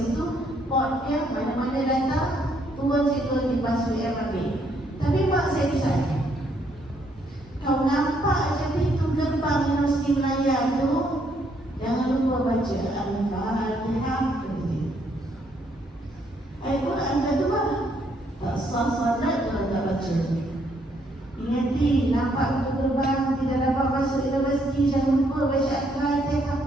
Port dia mana-mana datang, turun situ di bas UM ambil. Tapi mak saya pesan, kau nampak je pintu gerbang Universiti Melayu tu, jangan lupa baca Al-Fatihah. Ayat Quran dah tu lah. Tak sah salat kalau tak baca. Ingati, nampak pintu gerbang, tidak dapat masuk universiti, jangan lupa baca Al-Fatihah.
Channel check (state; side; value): normal; both; correlation 0.71